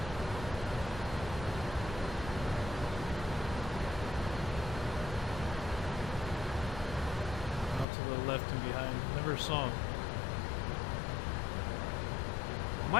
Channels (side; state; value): right; drops out; at 7.9 s